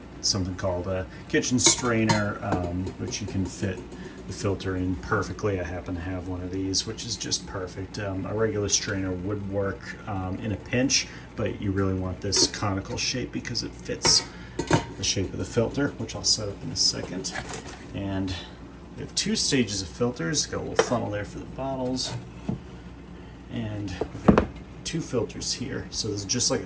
something called a kitchen strainer, which you can fit the filter in perfectly. I happen to have one of these, which is just perfect. A regular strainer would work in a pinch, but you really want this conical shape because it fits the shape of the filter, which I'll set up in a second. And we have two stages of filters. Got a little funnel there for the bottles, and we've got two filters here. So this is just like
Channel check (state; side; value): identical; both; correlation 1.00